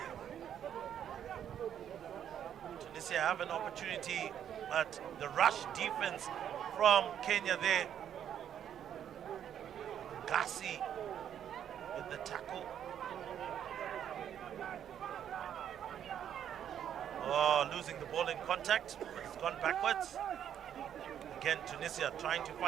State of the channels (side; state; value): left; quieter; 9.6 dB